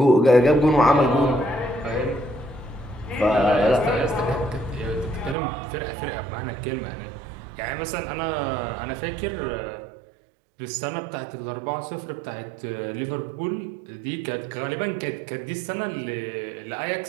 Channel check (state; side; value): drops out; left; at 5.4 s